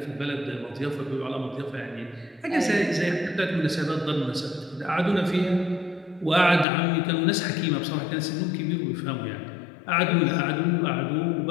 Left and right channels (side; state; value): right; drops out; at 6.7 s